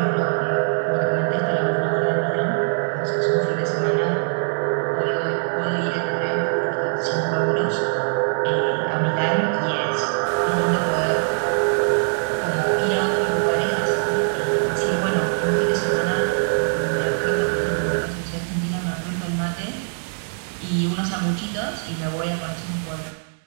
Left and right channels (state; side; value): silent; left; digital silence